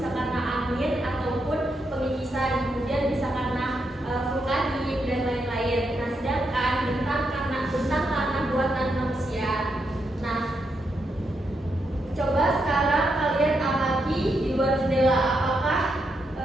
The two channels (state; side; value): normal; both; correlation 0.82